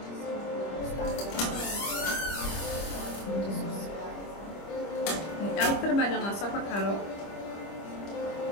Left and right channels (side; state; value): right; late; 25 ms